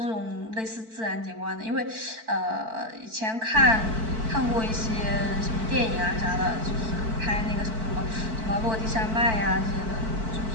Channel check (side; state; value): left; late; 4.5 ms